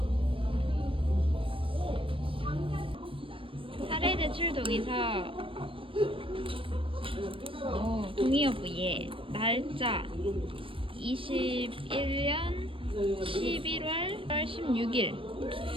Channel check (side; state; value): left; late; 0.25 ms